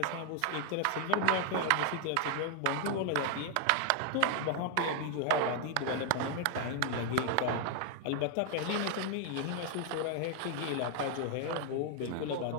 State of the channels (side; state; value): both; different; correlation 0.00